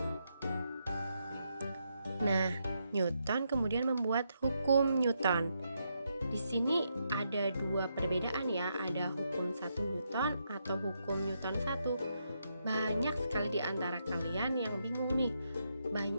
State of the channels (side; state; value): both; inverted; correlation -0.80